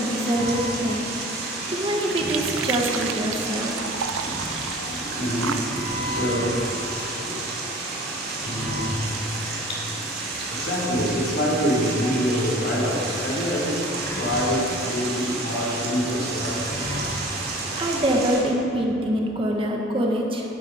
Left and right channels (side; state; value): both; normal; correlation 0.44